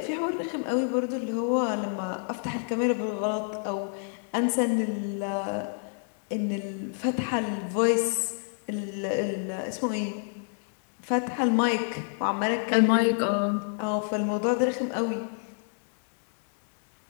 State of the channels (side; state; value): right; silent; 59 dB below the other